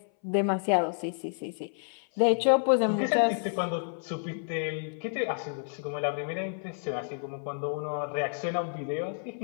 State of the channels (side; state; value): right; silent; 57 dB below the other